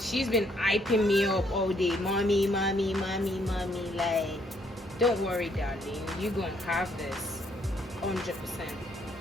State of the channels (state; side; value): normal; both; correlation 0.69